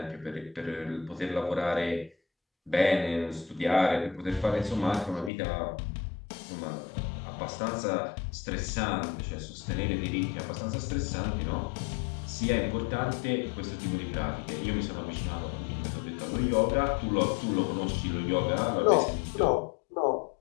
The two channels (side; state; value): right; drops out; at 5.3 s